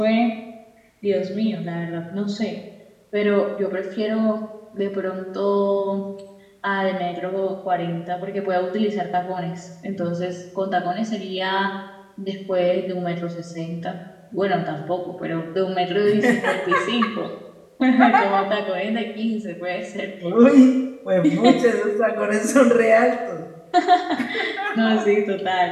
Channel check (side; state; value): both; identical; correlation 1.00